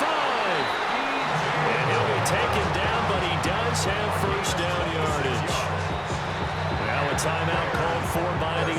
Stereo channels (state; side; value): identical; both; correlation 1.00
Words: And he'll be taken down, but he does have 1st down yardage. Now a timeout called for by the